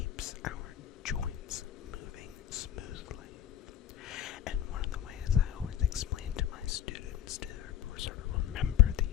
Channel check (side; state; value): right; quieter; 10.7 dB